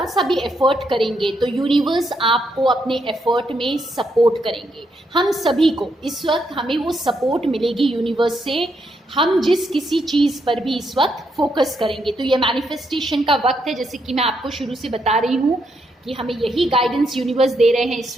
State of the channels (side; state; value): both; normal; correlation 0.78